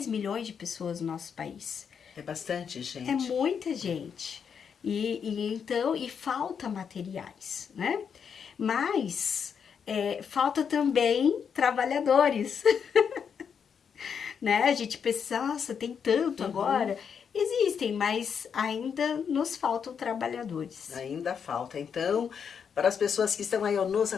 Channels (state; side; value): quieter; right; 7.0 dB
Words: milhões de pessoas no nosso país. É bastante gente. É muita gente. E falta materiais, né? Mas falta também trabalhadores. Né? A gente pensa, nossa, tem tanto agora. Existem, mas ainda nos faltam trabalhadores. Ainda falta. Então, para as pessoas que estão aí nos